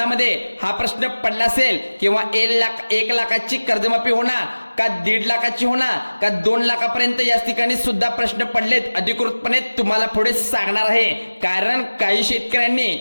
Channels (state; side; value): inverted; both; correlation -1.00